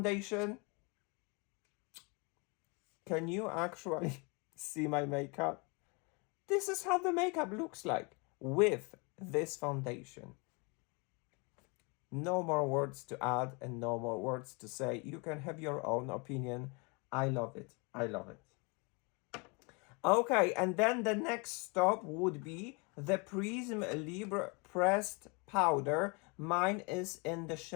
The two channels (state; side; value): quieter; right; 30.9 dB